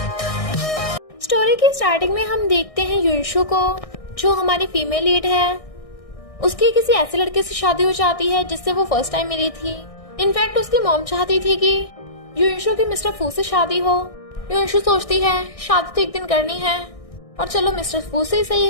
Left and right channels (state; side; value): late; right; 1.6 ms